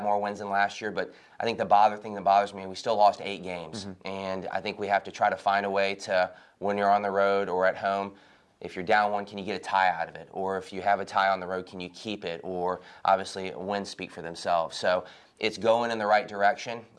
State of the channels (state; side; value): identical; both; correlation 1.00